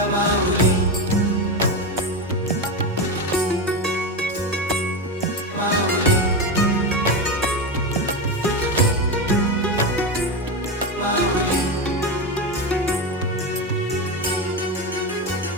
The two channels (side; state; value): both; normal; correlation 0.15